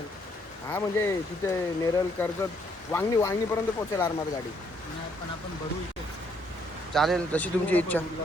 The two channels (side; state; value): both; normal; correlation 0.69